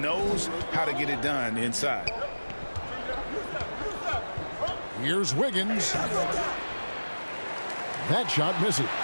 how to get it done inside. Here's Wiggins. That shot misses.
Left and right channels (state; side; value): inverted; both; correlation -1.00